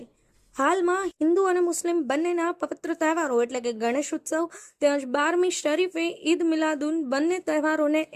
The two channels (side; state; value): both; identical; correlation 1.00